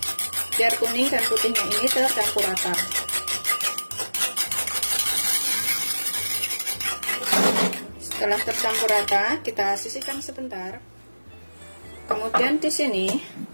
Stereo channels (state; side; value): inverted; both; correlation -1.00